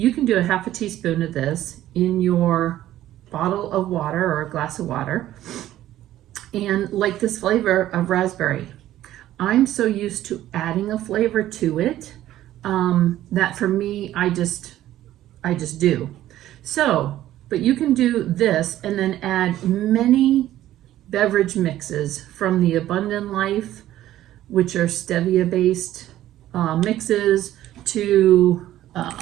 can do a half a teaspoon of this in your bottle of water or a glass of water, and like this flavor of raspberry. I'm so used to adding a flavor to it that for me, I just do. So, but you can do this and then add many beverage mixes from the Abundant Life, which are stevia based mixes, to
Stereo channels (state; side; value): quieter; left; 13.5 dB